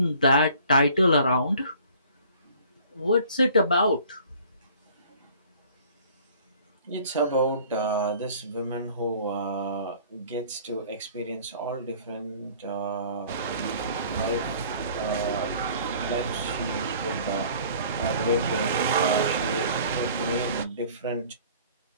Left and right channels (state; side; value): inverted; both; correlation -0.51